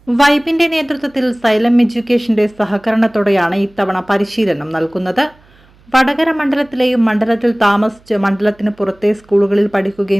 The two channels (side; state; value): right; noise; hum, 30 dB below the sound